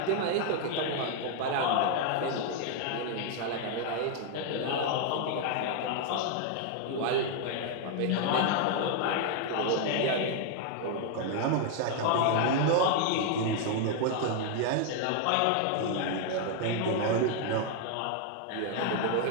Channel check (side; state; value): both; different; correlation 0.00